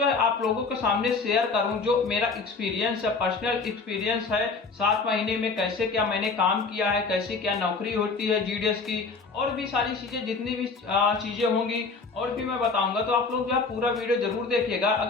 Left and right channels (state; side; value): quieter; right; 4.3 dB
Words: है आप लोगों के सामने शेयर करूं। जो मेरा एक्सपीरियंस है, पर्सनल एक्सपीरियंस है, 7 महीने में कैसे क्या मैंने काम किया है, कैसे क्या नौकरी होती है जीडीएस की, और भी सारी चीजें जितनी भी चीजें होंगी और भी मैं बताऊंगा। तो आप लोग जो है पूरा वीडियो जरूर देखिएगा।